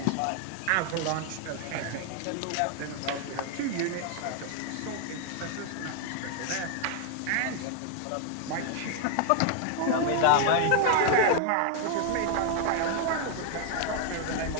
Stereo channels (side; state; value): both; different; correlation 0.00